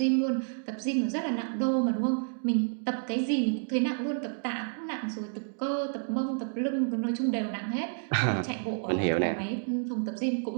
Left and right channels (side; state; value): left; silent; digital silence